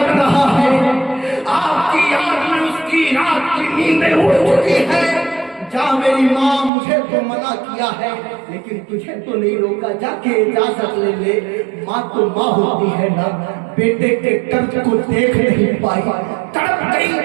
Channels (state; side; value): drops out; left; at 6.7 s